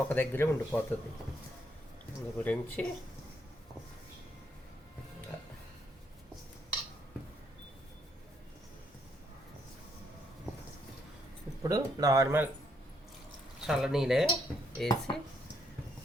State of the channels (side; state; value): both; normal; correlation 0.73